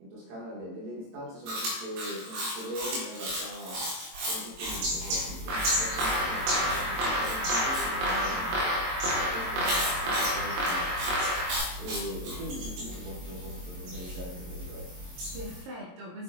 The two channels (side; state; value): left; late; 22 ms